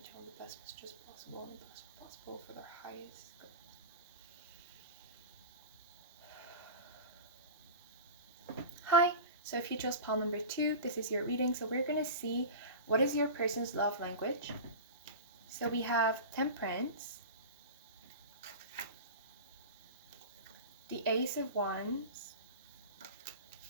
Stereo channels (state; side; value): inverted; both; correlation -0.30